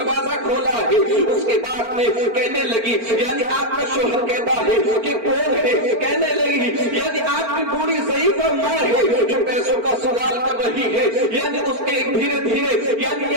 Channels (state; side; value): late; left; 4.4 ms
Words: کھولا ہے اس کے بعد میں کہنے لگی یعنی آپ کا شوہر کہتا ہے کہ کون ہے, کہنے لگی یعنی آپ کی بوڑھی ضعیفہ ماں ہے جو پیسوں کا سوال کر رہی ہے, یعنی اس کے دھیرے دھیرے یعنی